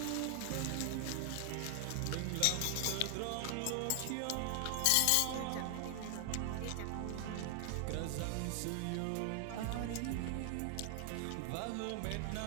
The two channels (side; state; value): both; different; correlation 0.00